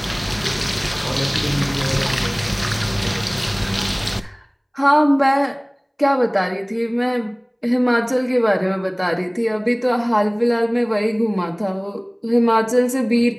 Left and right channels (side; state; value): both; identical; correlation 1.00